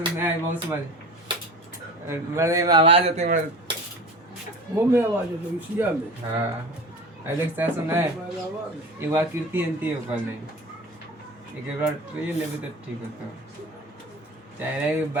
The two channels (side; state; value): both; normal; correlation 0.35